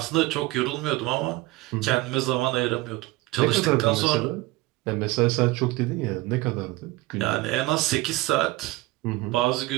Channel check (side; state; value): left; quieter; 20.2 dB